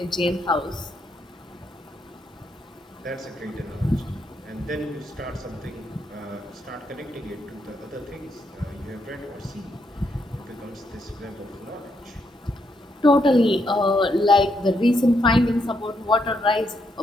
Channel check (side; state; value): both; normal; correlation 0.77